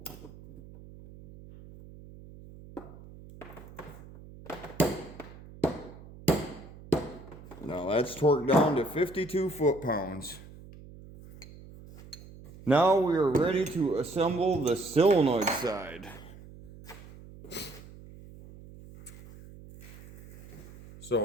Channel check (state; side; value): noise; right; hum, 18 dB below the sound